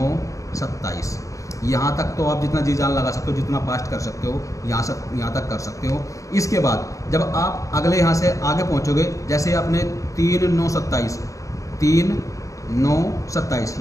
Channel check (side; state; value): right; late; 0.16 ms